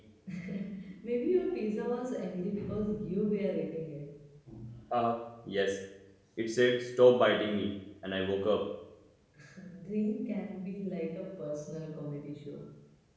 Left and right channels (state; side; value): identical; both; correlation 1.00